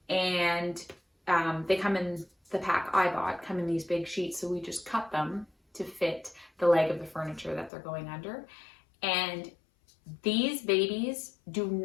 And they come in the pack I bought, come in these big sheets. So we just cut them to fit the leg of the furniture that they're going under. And these babies do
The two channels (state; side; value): drops out; right; at 7.7 s